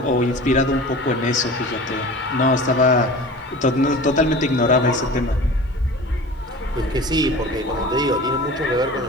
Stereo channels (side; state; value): both; normal; correlation 0.38